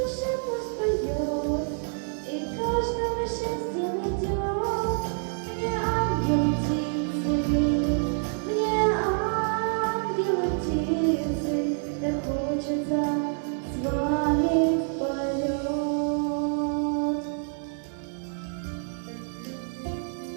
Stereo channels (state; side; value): silent; left; 60 dB below the other